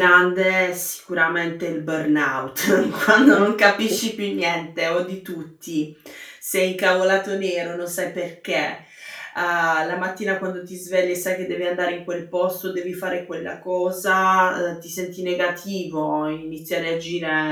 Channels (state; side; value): identical; both; correlation 1.00